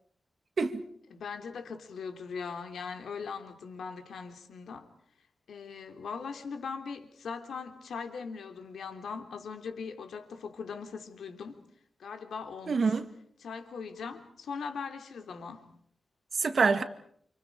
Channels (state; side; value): normal; both; correlation 0.85